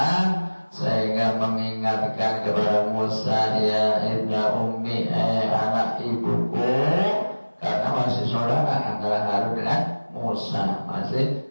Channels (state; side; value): inverted; both; correlation -1.00